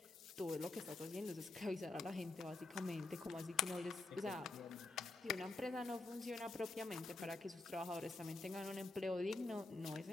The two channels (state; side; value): quieter; right; 3.2 dB